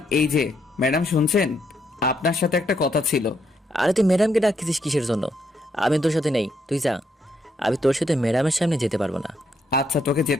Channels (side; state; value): both; normal; correlation 0.76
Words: এই যে ম্যাডাম শুনছেন, আপনার সাথে একটা কথা ছিল। আরে তুই ম্যাডামকে ডাকতেছিস কিসের জন্য? আমি তোর সাথে নেই, তুই যা। আমি তোর সাথে ম্যাডামের সামনে যেতে পারবো না। আচ্ছা, তোকে